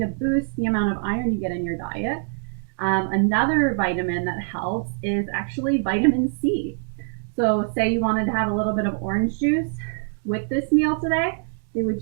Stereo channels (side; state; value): left; silent; digital silence